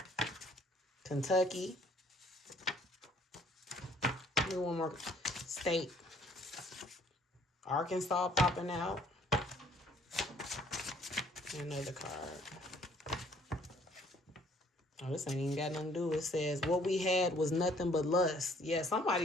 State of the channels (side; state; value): both; normal; correlation 0.60